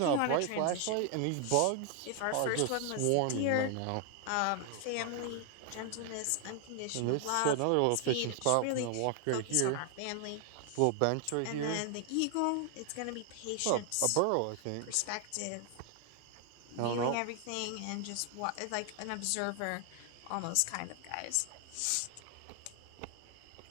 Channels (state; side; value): different; both; correlation 0.00